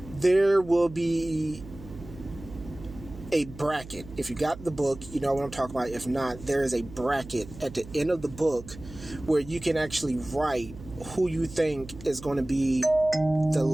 there will be a bracket. If you got the book, you know what I'm talking about. If not, there is a bracket at the end of the book where you can actually write who you think is going to be the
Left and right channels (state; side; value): noise; right; hum, 16 dB below the sound